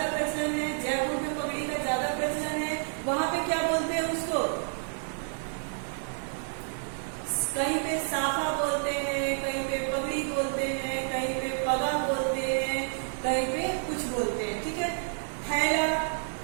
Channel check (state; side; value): silent; left; 58 dB below the other